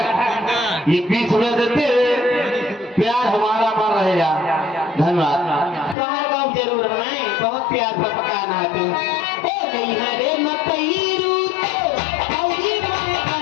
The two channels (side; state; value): right; drops out; at 6.0 s